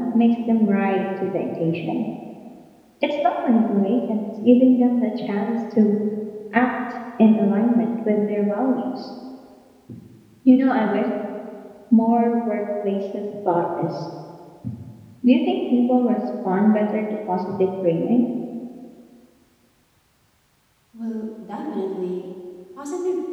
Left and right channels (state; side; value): identical; both; correlation 1.00